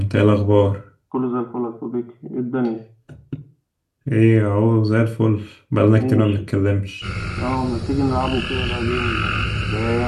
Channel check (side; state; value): both; identical; correlation 1.00